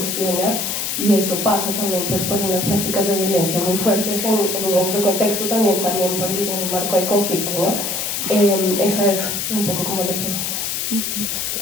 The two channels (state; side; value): noise; left; hiss, 2 dB below the sound